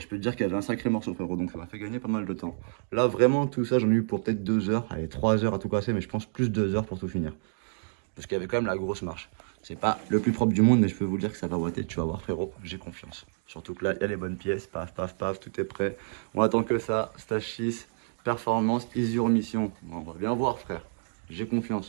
peux te dire qu'il y avait un sacré morceau, frérot, donc ça m'a fait gagner pas mal de temps. Là, vraiment, tout ça, j'en ai eu pour peut-être 2 heures, allez, 3 heures à tout casser, mais je pense plus 2 heures pour tout finir. Parce qu'il y avait quand même la grosse marche. C'est pas le plus propre du monde, mais je peux vous dire que ça va boiter, tu vas voir, frérot, j'ai confiance. Surtout que là, il y a les bonnes pièces, paf, paf, paf, tout est prêt. On attend que ça, stage 6, performance, easy remission. Bon, on va bien voir, frère. J'ai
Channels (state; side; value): silent; left; digital silence